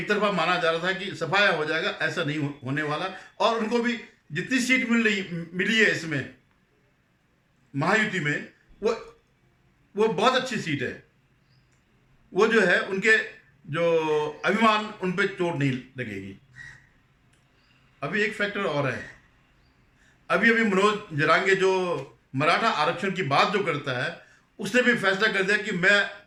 तरफा माना जा रहा था कि सफाया हो जाएगा, ऐसा नहीं होने वाला। और उनको भी जितनी सीट मिली है इसमें महायुति में, वो बहुत अच्छी सीट है। वो जो है उनके जो अभिमान, उन पे चोट नहीं लगेगी। अभी एक फैक्टर और है, अभी मनोज जरांगे जो मराठा आरक्षण की बात जो करता है, उसने भी फैसला कर दिया कि मैं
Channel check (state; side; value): identical; both; correlation 1.00